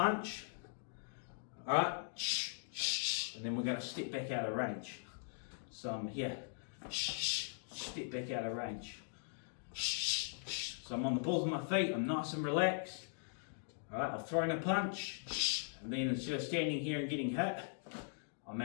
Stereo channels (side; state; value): right; silent; digital silence